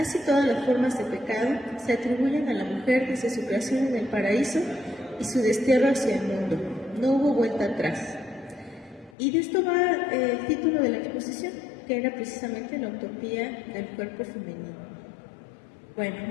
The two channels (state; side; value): drops out; right; at 9.2 s